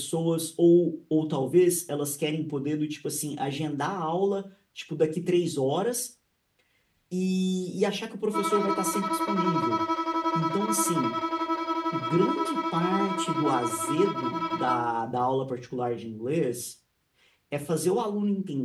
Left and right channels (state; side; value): identical; both; correlation 1.00